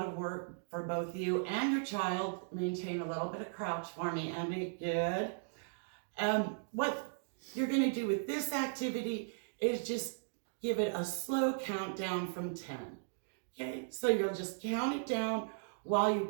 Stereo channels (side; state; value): left; silent; digital silence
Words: of work for both you and your child, maintain a little bit of crouch for me, Andy. Good. What you're going to do with this activity is just give it a slow countdown from 10. Okay, so you'll just count it down while